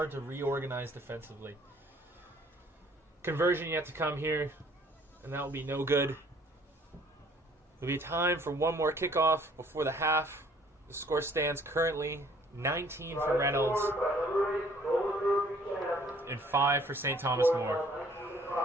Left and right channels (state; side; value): normal; both; correlation 0.58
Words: to reorganize defensively. Conversion yet to come here, and that will be no good. There'll be time for one more kickoff before the half. The score stands currently 19 for Reynolds and 5 for St. Thomas More.